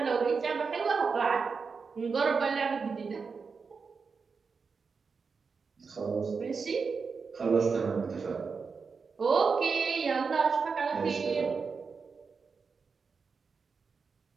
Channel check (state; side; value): quieter; left; 5.1 dB